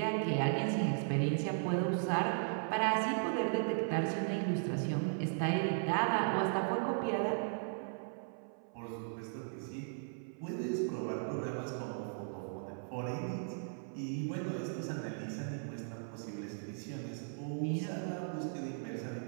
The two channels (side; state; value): left; silent; 53 dB below the other